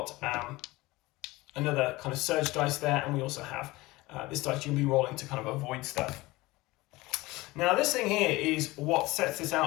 another kind of surge dice there, and we also have this dice you'll be rolling to kind of avoid stuff. Now this thing here is what sets this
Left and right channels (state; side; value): quieter; right; 20.6 dB